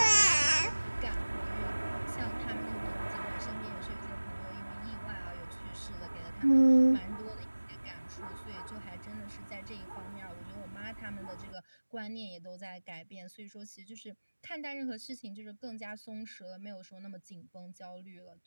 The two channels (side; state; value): both; inverted; correlation -1.00